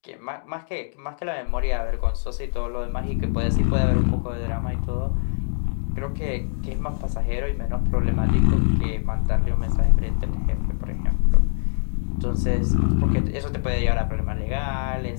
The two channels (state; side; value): silent; right; digital silence